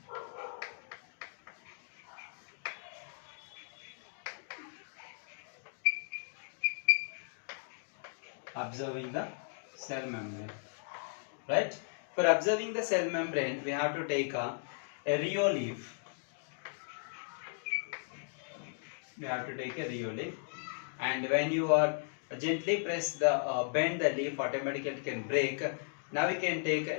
Observing the cell membrane. Right? For observing the cell membrane, we have to take a Rio leaf. We have to take a Rio leaf, and when you are gently press the bend the leaf, automatically it can break. Now we can take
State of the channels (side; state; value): right; silent; digital silence